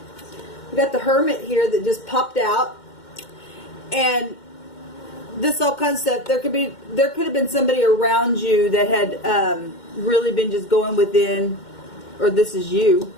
We got the Hermit here that just popped out. And this all kinds of stuff. There could have been somebody around you that had really been just going within, or this is you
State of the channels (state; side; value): late; right; 2.1 ms